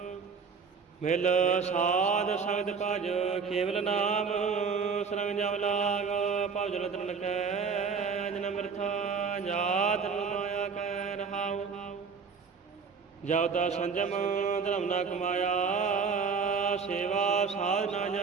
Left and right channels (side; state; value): left; quieter; 5.6 dB